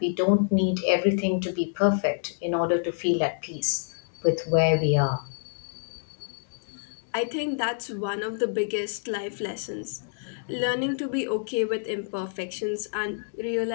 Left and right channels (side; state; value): right; silent; digital silence